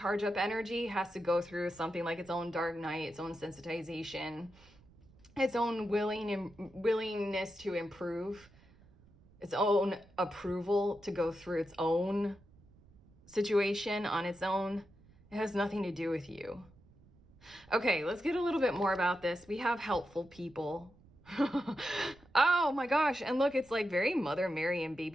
up energy, has to go through something like its own dark night, its own sensitization, its own willingness to improve, its own approval to go through its own situation on its own. It has nothing to do with you. Okay, let's get a little bit more about this. We have helpful people. Oh my gosh. And look, it's like very Mother Mary and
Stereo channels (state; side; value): noise; right; rumble, 27 dB below the sound